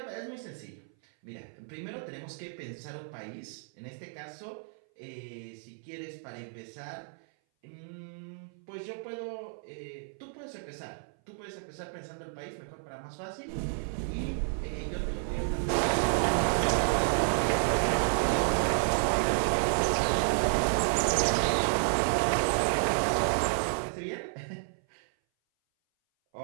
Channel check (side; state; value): left; silent; 57 dB below the other